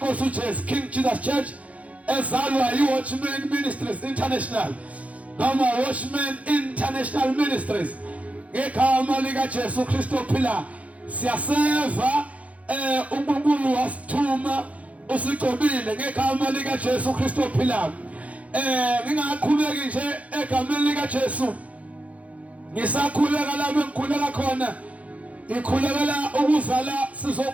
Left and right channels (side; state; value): left; late; 0.066 ms